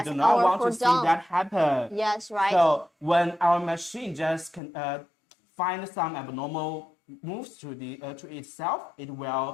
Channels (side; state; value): right; drops out; at 4.6 s